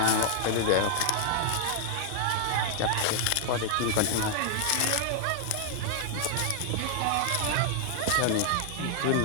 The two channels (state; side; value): different; both; correlation 0.00